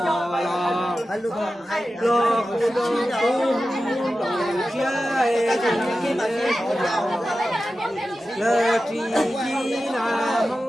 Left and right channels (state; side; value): normal; both; correlation 0.93